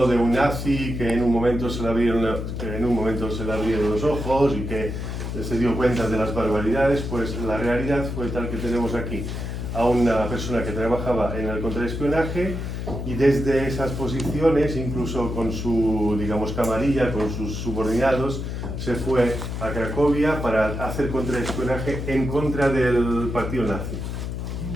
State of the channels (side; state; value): left; noise; hum, 5 dB below the sound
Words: de un nazi que en un momento se le abrieron los ojos y que se dio cuenta de las barbaridades, pues la realidad fue tal que tenemos aquí a una persona que trabajaba en el contraespionaje y desde esas posiciones, incluso con su, digamos, camarilla, con sus subordinados, se fue a Cracovia para hacer contraespionaje en contra del partido nazi.